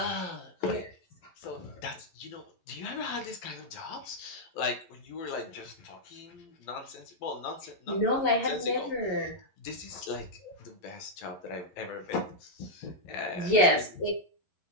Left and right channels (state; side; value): late; right; 12 ms